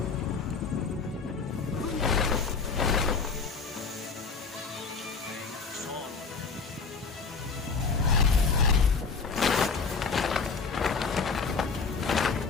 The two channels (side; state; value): right; quieter; 4.9 dB